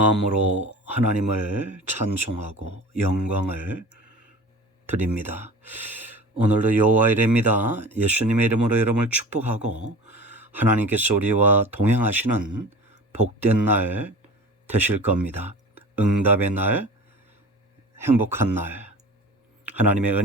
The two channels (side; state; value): both; normal; correlation 0.38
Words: 하나님을 찬송하고 영광을 드립니다. 오늘도 여호와 이레입니다. 예수님의 이름으로 여러분을 축복하고 하나님께서 우리와 동행하시는 복된 날 되실 겁니다. 응답의 날, 행복한 날, 하나님의